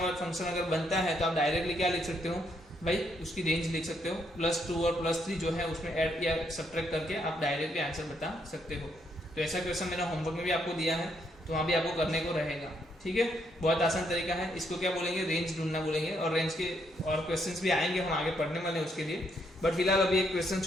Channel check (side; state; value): both; normal; correlation 0.74